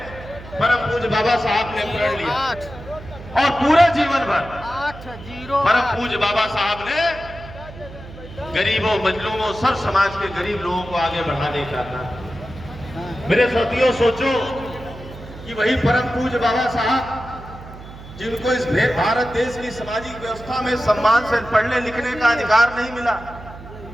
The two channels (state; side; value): noise; right; hum, 16 dB below the sound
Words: परम पूज्य बाबा साहब ने प्रण लिया। और पूरे जीवन भर परम पूज्य बाबा साहब ने गरीबों, मजलूमों, सर्व समाज के गरीब लोगों को आगे बढ़ाने का था। मेरे साथियों, सोचो कि वही परम पूज्य बाबा साहब जिनको इस भारत देश की सामाजिक व्यवस्था में सम्मान से पढ़ने लिखने का अधिकार नहीं मिला,